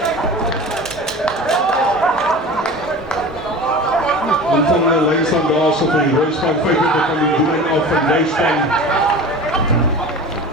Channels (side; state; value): both; normal; correlation 0.35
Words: En van de lijnstaan daar zo van die Royspan 25 van die doelijn af van Nijspan.